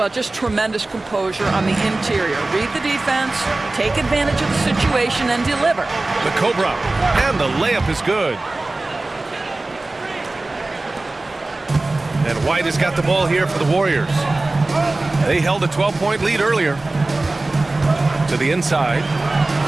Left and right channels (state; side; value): quieter; left; 3.0 dB